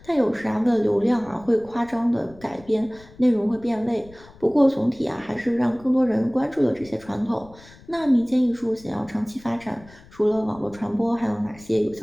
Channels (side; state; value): left; noise; rumble, 23 dB below the sound